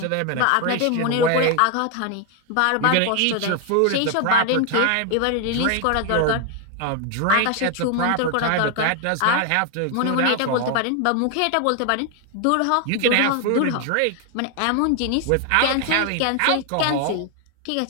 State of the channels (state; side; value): different; both; correlation 0.01